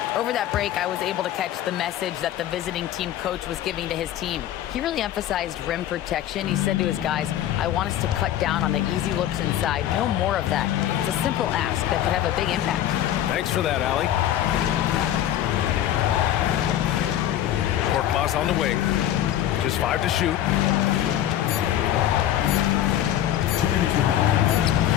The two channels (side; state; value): right; quieter; 11.9 dB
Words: over that break, I was able to catch the message that the visiting team coach was giving to his team. He really emphasized rim protection. He said to his guys, I want us to cut down on the easy looks inside. No more of that. It's a simple ask that could have a big impact. Thanks for that, Allie. Korkmaz on the wing. Just 5 to shoot.